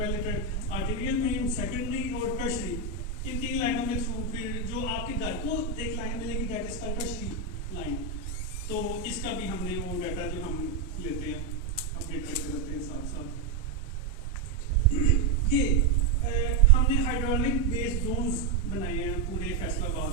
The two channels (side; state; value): left; quieter; 4.4 dB